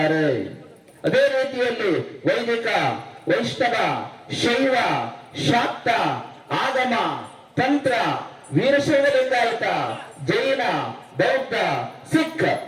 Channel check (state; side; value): identical; both; correlation 1.00